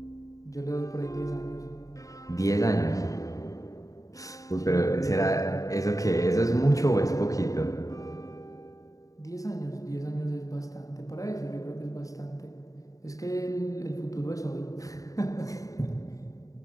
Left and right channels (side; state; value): right; late; 0.16 ms